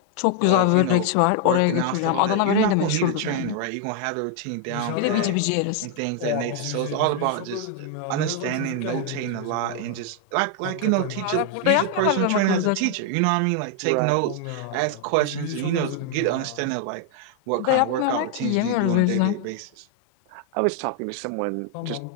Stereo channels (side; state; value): both; different; correlation 0.00